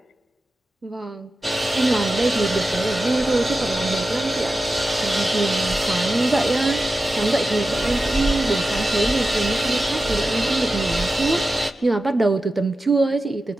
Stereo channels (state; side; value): normal; both; correlation 0.93